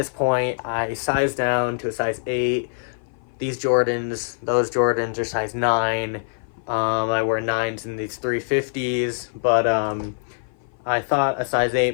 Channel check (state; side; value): silent; right; 57 dB below the other